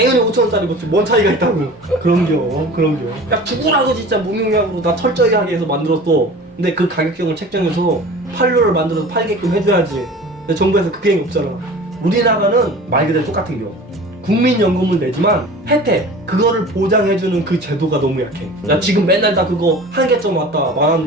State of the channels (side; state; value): both; normal; correlation 0.40